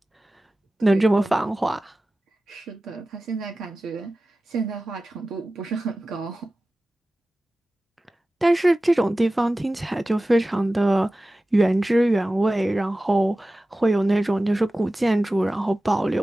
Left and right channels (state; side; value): normal; both; correlation 0.96